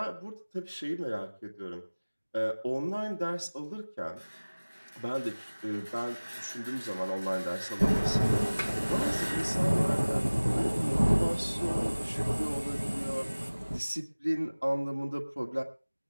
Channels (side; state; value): both; inverted; correlation -1.00